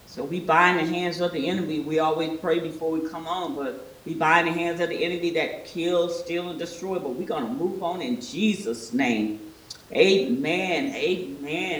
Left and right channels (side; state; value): both; identical; correlation 1.00